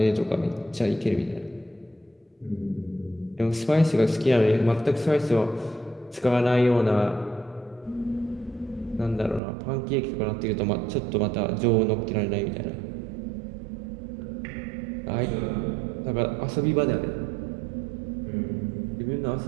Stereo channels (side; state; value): left; drops out; at 9.4 s